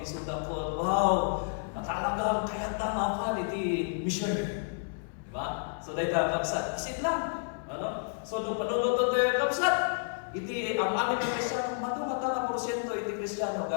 ay sudakot, wow, talagang kaya tamapan, iti mission. Diba? So dahil kakapsat, basit lang. Ano? So nung panuluto tayo kakapsat, iti ang amin ng Kristyano, matang-matang porsyento iti Kristyano,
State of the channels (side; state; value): right; silent; 57 dB below the other